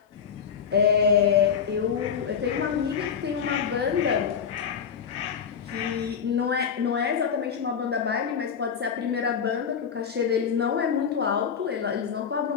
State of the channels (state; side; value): quieter; right; 7.1 dB